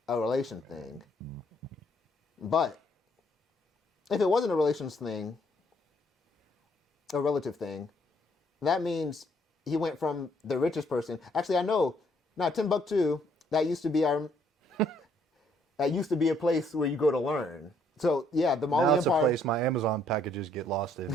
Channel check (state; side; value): normal; both; correlation 0.68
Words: relation thing. But if it wasn't a relations thing, a relative thing, that means he went from the richest person. Actually, I know. Now, Timbuktu, that used to be that used to be a place where you go to learn. So yeah, the Mali Now it's Empire. a place my Amazon packages get lost in.